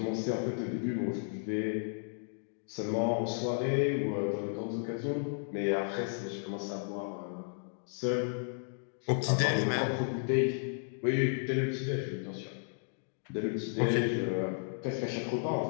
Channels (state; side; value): silent; right; digital silence